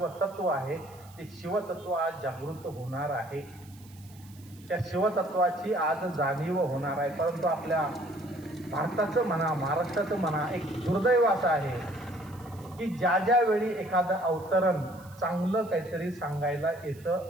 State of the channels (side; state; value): right; noise; hiss, 25 dB below the sound